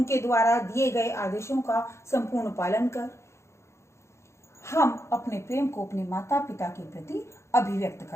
द्वारा दिए गए आदेशों का संपूर्ण पालन कर हम अपने प्रेम को अपने माता पिता के प्रति अभिव्यक्त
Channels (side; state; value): right; late; 0.13 ms